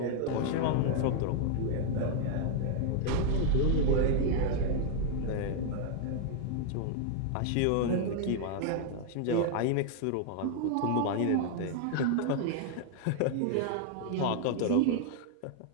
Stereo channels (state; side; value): different; both; correlation 0.00